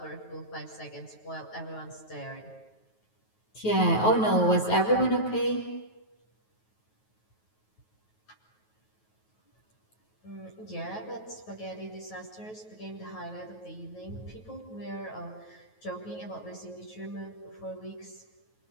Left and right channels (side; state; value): right; late; 9.3 ms